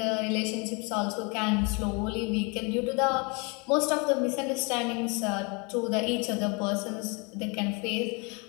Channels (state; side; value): quieter; right; 30.7 dB